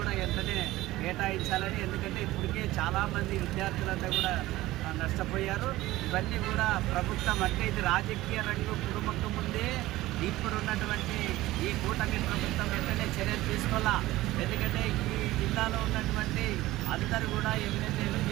వెంటనే కేటాయించాలని. ఎందుకంటే ఇప్పటికే చాలామంది విద్యార్థులంతా కూడా నష్టపోయారు. ఇవన్నీ కూడా ప్రభుత్వం అంటే ఇది రాజకీయ రంగు కుటుంబకు ముందే ఇప్పుడు ఉన్నటువంటి ఈ కూటమి ప్రభుత్వం వెంటనే చర్యలు తీసుకోవాలా. ఎందుకంటే ఈ జిల్లాలో ఉన్నటువంటి అందరూ కూడా ఎమ్మెల్యేలు,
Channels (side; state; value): left; quieter; 17.2 dB